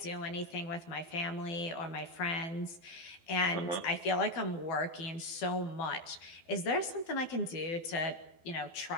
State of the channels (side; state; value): right; late; 12 ms